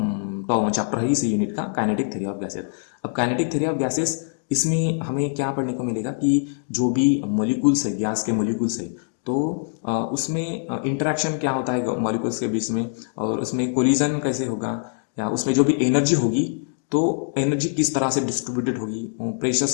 चैप्टर है इस यूनिट का काइनेटिक थ्योरी ऑफ गैसेस। अब काइनेटिक थ्योरी ऑफ गैसेस इसमें हमें क्या पढ़ने को मिलेगा कि जो भी मॉलिक्यूल्स है, गैस के मॉलिक्यूल्स है, तो उसमें इंटरेक्शन क्या होता है मॉलिक्यूल्स के बीच में, और उसमें कोलिजन कैसे होगा, या उसमें जो भी एनर्जी होगी तो एनर्जी किस तरह से डिस्ट्रीब्यूटेड होगी,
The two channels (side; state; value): right; silent; digital silence